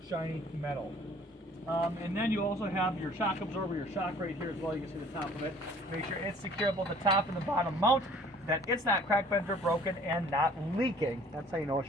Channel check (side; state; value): both; normal; correlation 0.53